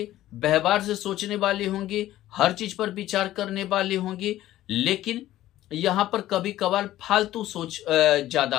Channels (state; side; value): quieter; right; 14.4 dB